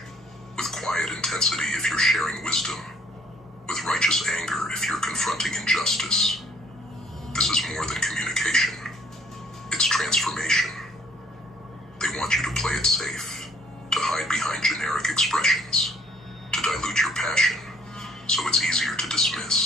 with quiet intensity if you're sharing wisdom, with righteous anger if you're confronting injustice. This is more than communication. It's transformation. They want you to play it safe, to hide behind generic expressions, to dilute your passion, so it's easier to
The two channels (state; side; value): normal; both; correlation 0.61